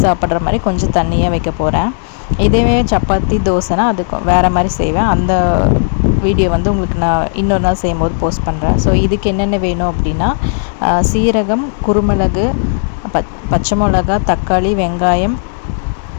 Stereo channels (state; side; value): silent; right; digital silence